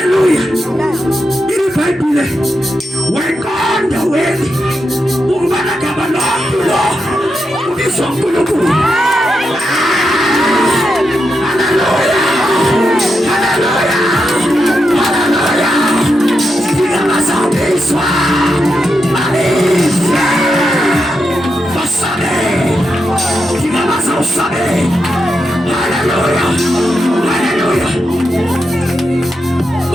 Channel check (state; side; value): normal; both; correlation 0.85